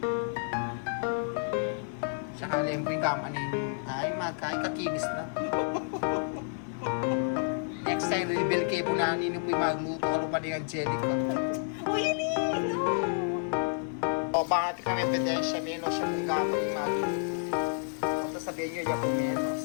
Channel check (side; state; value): right; silent; digital silence